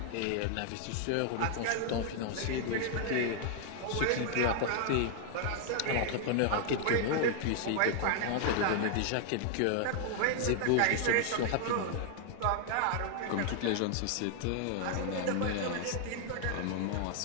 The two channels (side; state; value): both; different; correlation 0.00